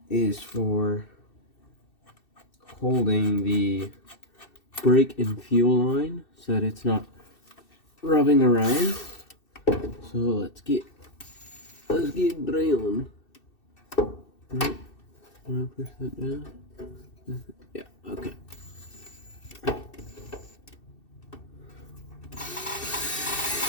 is for holding the brake and fuel line so that it's not rubbing around. So let's get drilling. Right. Want to push that down? Yeah, okay.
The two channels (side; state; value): right; late; 2.6 ms